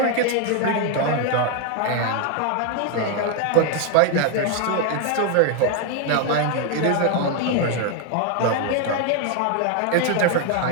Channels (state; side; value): different; both; correlation 0.01